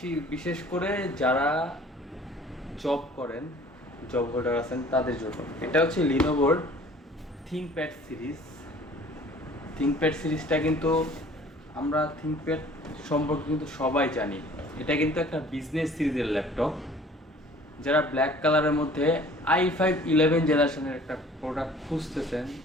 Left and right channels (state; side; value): normal; both; correlation 0.51